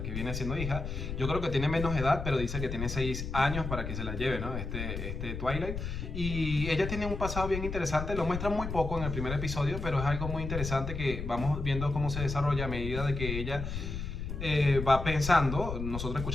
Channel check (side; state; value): left; noise; rumble, 5 dB below the sound